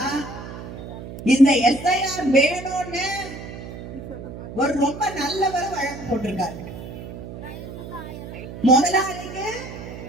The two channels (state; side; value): noise; right; hum, 11 dB below the sound